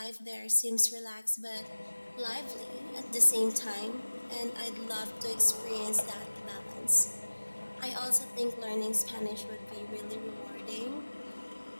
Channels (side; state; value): both; inverted; correlation -1.00